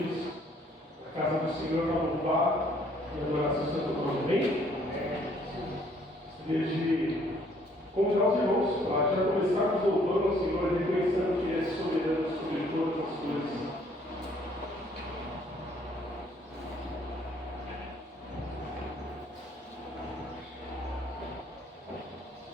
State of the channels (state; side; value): normal; both; correlation 0.63